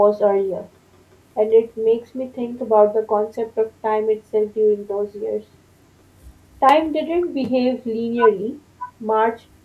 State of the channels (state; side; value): identical; both; correlation 1.00